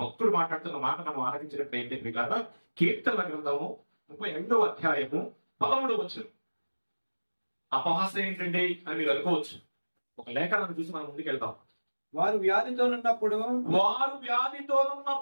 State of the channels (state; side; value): inverted; both; correlation -1.00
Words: భక్తుడు మాట్లాడుతున్న మాట మనం ఆలకించినప్పుడు ఏంటి ప్రియులారా? కీర్తనల గ్రంథము 35వ అధ్యాయము 13వ వచనం. అపహాసం ఏంటండి అని మీరు అనుకోవచ్చు. ఒక లేఖనాన్ని చూసి మనం ముందుకెళ్తాం. వారు వ్యాధితో